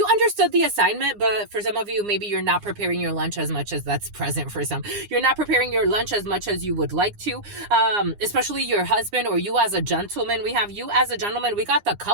understood the assignment, but for some of you, maybe you're not preparing your lunch as much as that's present for some. You're not preparing your lunch as much as you would like to, especially your husband or you as a gentleman. We have you as a gentleman. We got the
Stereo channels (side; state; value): left; late; 9.8 ms